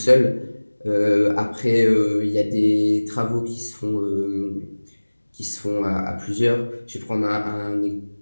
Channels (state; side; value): inverted; both; correlation -1.00